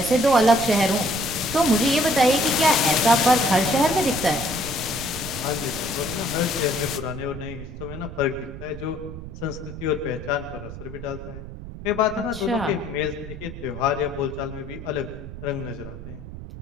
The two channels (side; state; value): right; noise; rumble, 11 dB below the sound